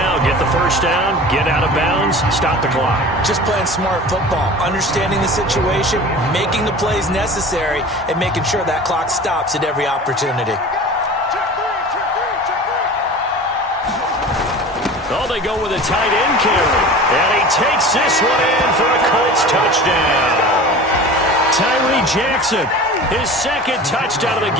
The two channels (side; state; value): both; normal; correlation 0.37